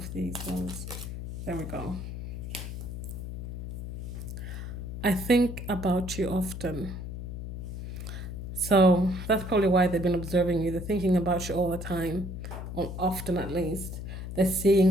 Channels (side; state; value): left; noise; hum, 7 dB below the sound